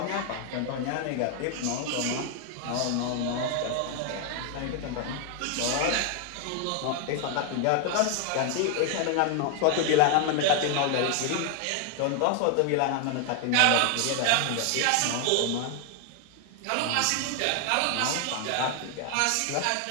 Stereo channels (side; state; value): both; different; correlation 0.00